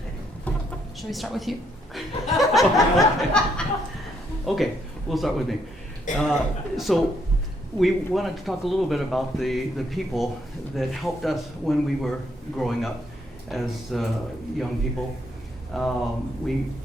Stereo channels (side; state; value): both; normal; correlation 0.72